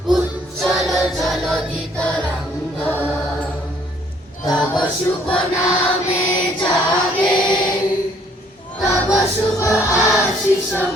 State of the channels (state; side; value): normal; both; correlation 0.63